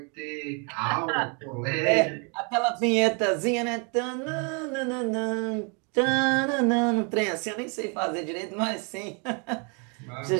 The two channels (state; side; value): quieter; left; 35.0 dB